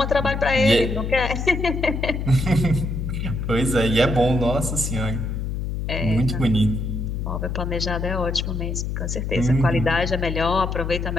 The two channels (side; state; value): left; noise; hum, 3 dB below the sound